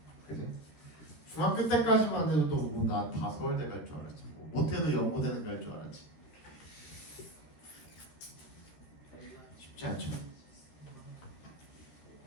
그지? 중학교 때까지만 해도 뭐 나 다 서울대 갈 줄 알았지 뭐. 못해도 연고대는 갈 줄 알았지. 쉽지 않죠.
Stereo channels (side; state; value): right; late; 13 ms